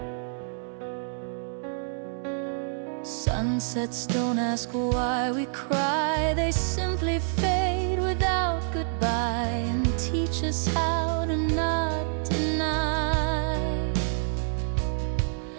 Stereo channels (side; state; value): left; silent; digital silence